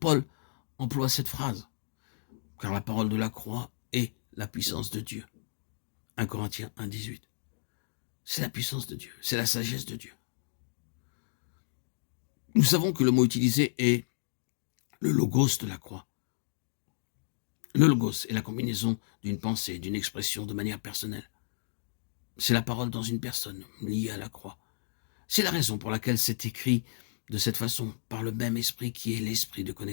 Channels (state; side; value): silent; right; digital silence